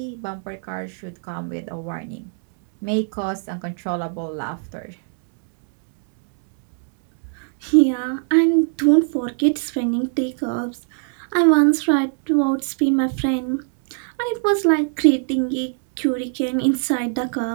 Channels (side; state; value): left; silent; 64 dB below the other